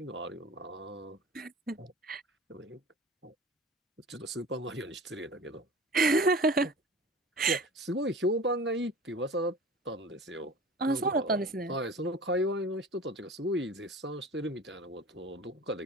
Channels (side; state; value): both; normal; correlation 0.39